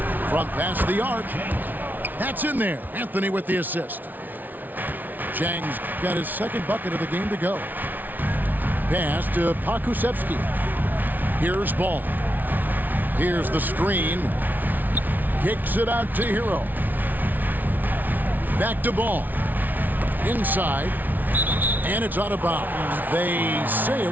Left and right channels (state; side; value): late; left; 0.083 ms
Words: Front pass the arc. That's in there. Anthony with the assist. Jang's got his second bucket of the game to go. Pass to Pakusevsky. Here's ball. Here's the screen. Kicks it out to Hero. Back to ball. Inside. And it's out of bounds. They say